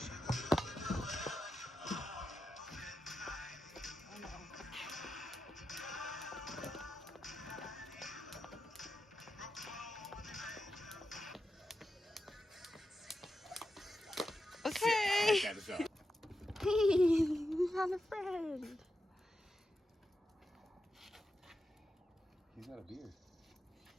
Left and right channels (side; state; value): both; normal; correlation 0.89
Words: Okay. We found a friend. He's got a beard.